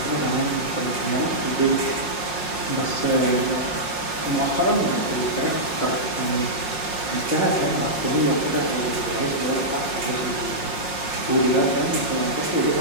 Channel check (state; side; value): late; right; 5.6 ms